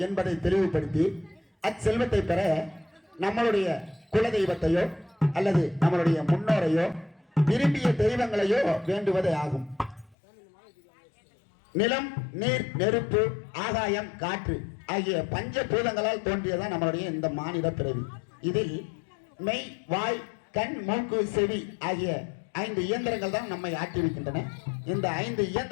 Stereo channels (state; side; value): drops out; right; at 10.2 s